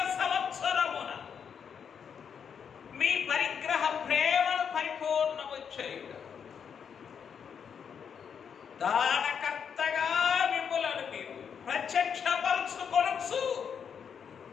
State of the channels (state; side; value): quieter; right; 7.2 dB